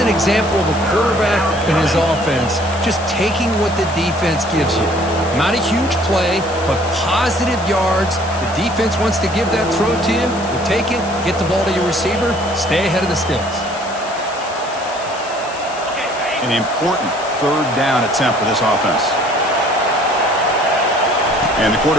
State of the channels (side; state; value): left; noise; hiss, 16 dB below the sound